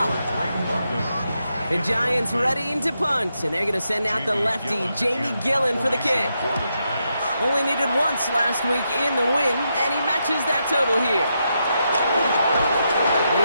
The Giants readying to punt, and they're going to send out the lefty, Jamie Gillen, for the kick. Only needed once last week in the win, and he matches that total here. And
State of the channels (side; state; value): both; inverted; correlation -0.83